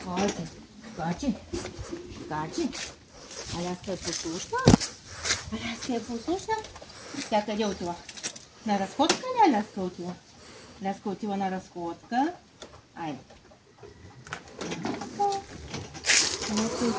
Скачи. Скачи. Скачи. Аляска послушна? Аляска е послушна? Тя къде отива? На разходка ли Аляска отива? Аляска отива на разходка. Айде. Аляска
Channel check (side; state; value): both; identical; correlation 1.00